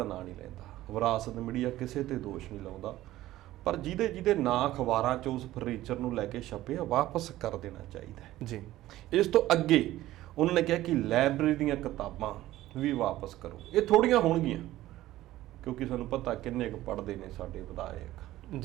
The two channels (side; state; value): left; quieter; 15.3 dB